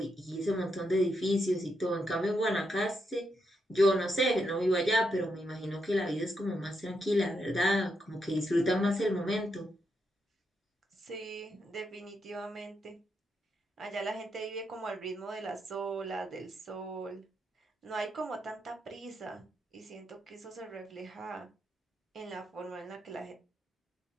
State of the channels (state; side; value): normal; both; correlation 0.82